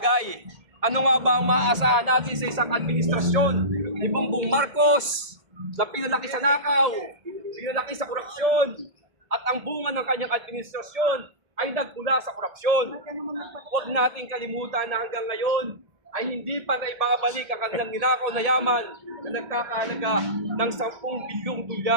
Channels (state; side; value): late; left; 1.7 ms